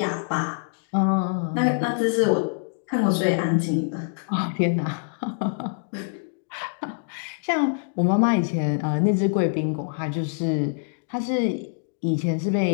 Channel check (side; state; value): right; silent; digital silence